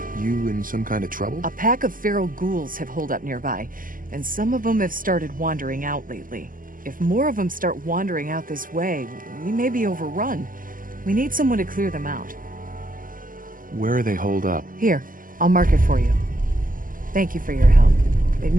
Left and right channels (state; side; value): late; left; 0.41 ms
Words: You in some kind of trouble? A pack of feral ghouls have holed up nearby, and some of them have started wandering out lately. If more of them start wandering out this way, we may be overrun. We need someone to clear them out. Where are they holed up? Here, I'll mark it for you. Thank you for your help. It